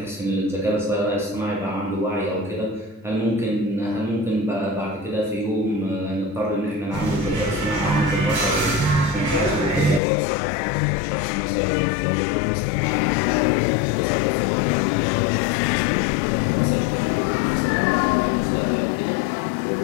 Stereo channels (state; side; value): drops out; right; at 10.0 s